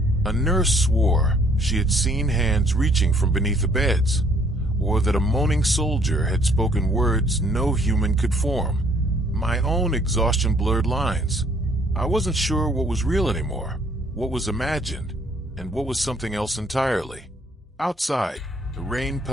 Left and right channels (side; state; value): both; normal; correlation 0.63